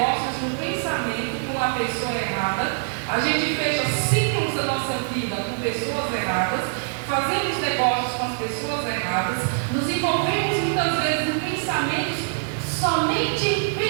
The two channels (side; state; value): left; silent; 63 dB below the other